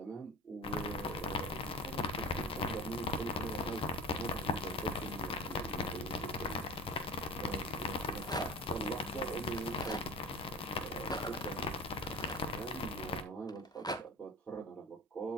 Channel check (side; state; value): both; normal; correlation 0.36